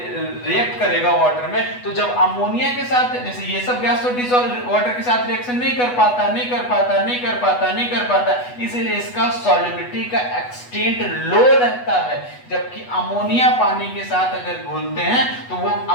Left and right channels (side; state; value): right; late; 8.1 ms